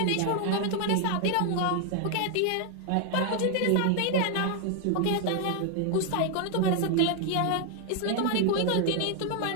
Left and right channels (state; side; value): different; both; correlation 0.00